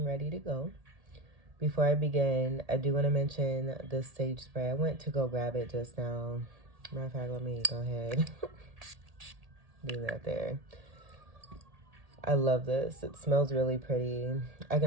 ready to go. Before I begin, I do want to mention this sage spray. I went to go grab it just now. Matter of fact, let me go ahead. Do that there. I love this. It smells really pretty. I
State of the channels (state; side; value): late; left; 1.8 ms